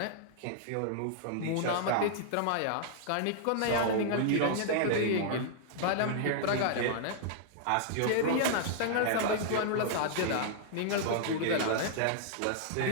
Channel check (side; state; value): both; different; correlation -0.01